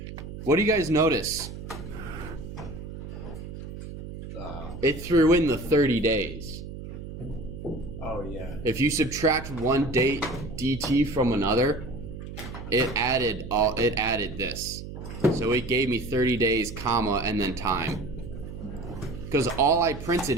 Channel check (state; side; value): noise; right; hum, 10 dB below the sound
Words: What do you guys notice? It threw in the 30 days. Oh yeah. If you subtract one date dt from another, it added this. So it gave me 30 days, comma, and then time. Because all I